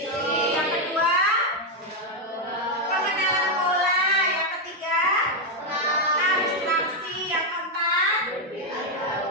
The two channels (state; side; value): normal; both; correlation 0.03